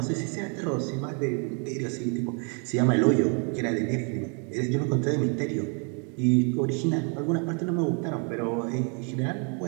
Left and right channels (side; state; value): left; quieter; 38.4 dB